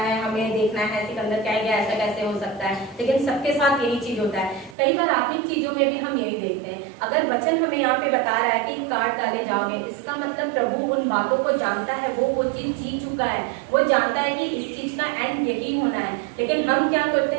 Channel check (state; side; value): drops out; left; at 4.8 s